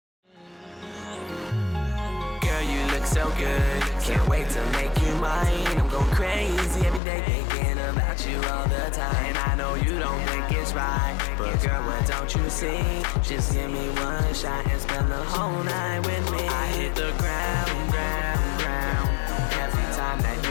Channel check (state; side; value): drops out; right; at 7.0 s